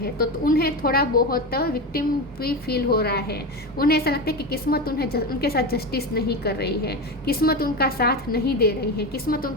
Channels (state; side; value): normal; both; correlation 0.20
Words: तो उन्हें थोड़ा बहुत विक्टिम भी फील हो रहा है। उन्हें ऐसा लगता है कि किस्मत उनके साथ जस्टिस नहीं कर रही है, किस्मत उनका साथ नहीं दे रही है, किस्मत